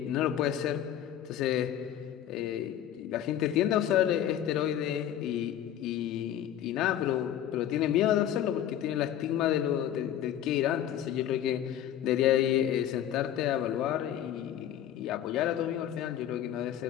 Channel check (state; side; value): quieter; right; 10.9 dB